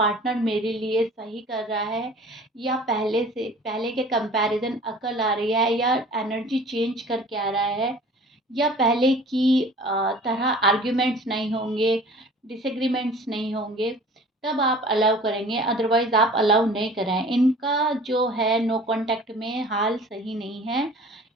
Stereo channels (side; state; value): both; normal; correlation 0.46